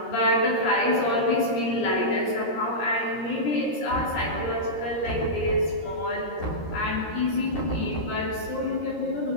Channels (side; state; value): right; late; 13 ms